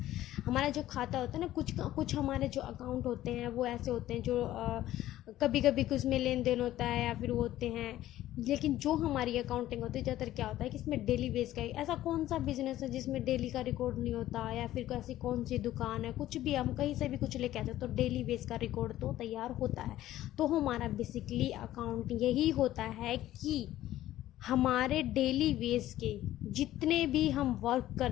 हमारा जो खाता होता है ना, कुछ हमारे जो अकाउंट होते हैं वो ऐसे होते हैं जो कभी कभी कुछ में लेन देन होता है या फिर वो होते हैं, लेकिन जो हमारी अकाउंटिंग होती है ज़्यादातर क्या होता है कि इसमें डेली बेस का, ऐसा कौन सा बिजनेस है जिसमें डेली का रिकॉर्ड नहीं होता, या फिर ऐसी कौन सी दुकान है, कुछ भी हम कहीं से भी कुछ लेके आते हैं तो डेली बेस का रिकॉर्ड तो तैयार होता है। तो हमारा बेसिकली अकाउंट यही होता है कि हमारे डेली बेस के जितने भी हम वर्क कर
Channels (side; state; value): right; quieter; 14.1 dB